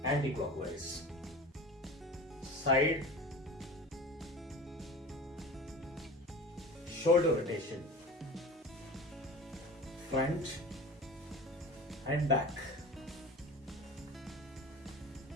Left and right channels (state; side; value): normal; both; correlation 0.35